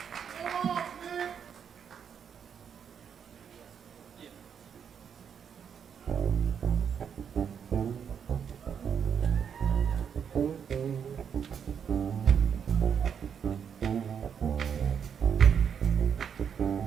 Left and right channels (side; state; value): left; quieter; 7.6 dB